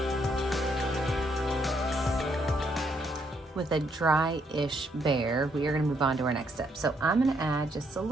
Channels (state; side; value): normal; both; correlation 0.73